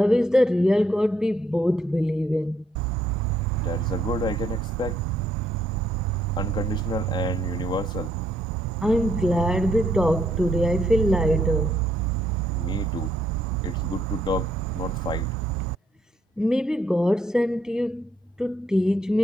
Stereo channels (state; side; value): normal; both; correlation 0.71